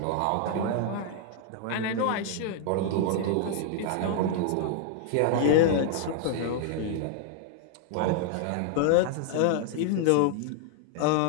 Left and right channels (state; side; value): different; both; correlation 0.00